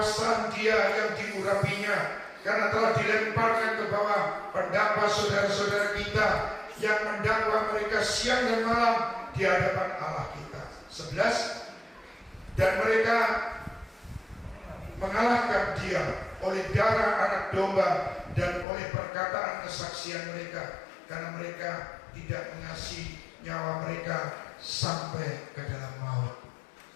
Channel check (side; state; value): right; drops out; at 18.7 s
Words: Dia yang diurapinya, karena telah dilemparkan ke bawah pendakwa saudara-saudara kita yang mendakwa mereka siang dan malam di hadapan Allah kita. 11. Dan mereka mengalahkan Dia oleh darah anak domba dan oleh perkataan perkataan kesaksian mereka, karena mereka tidak mengasihi nyawa mereka sampai ke dalam maut.